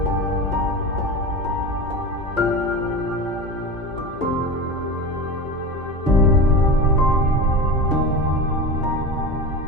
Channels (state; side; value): normal; both; correlation 0.27